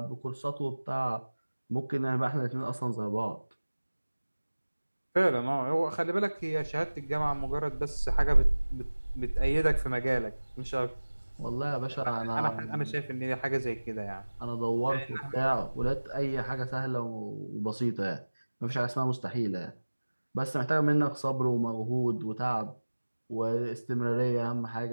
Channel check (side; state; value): both; inverted; correlation -1.00